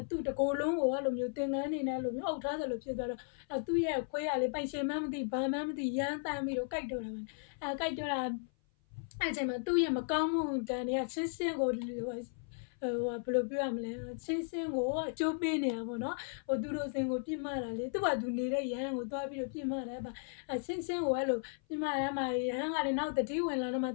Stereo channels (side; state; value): right; silent; 54 dB below the other